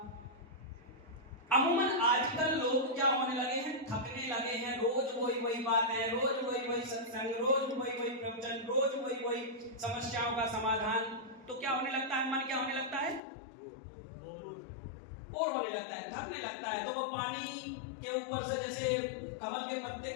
अमूमन आजकल लोग क्या होने लगे हैं, थकने लगे हैं। रोज वही बातें, रोज वही सत्संग, रोज वही प्रवचन, रोज वही समस्याओं का समाधान। तो क्या होने लगता है, मन क्या होने लगता है, बोर होने लगता है, थकने लगता है। तो वो पानी के ऊपर से, जैसे कमल के पत्ते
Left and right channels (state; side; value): drops out; right; at 13.2 s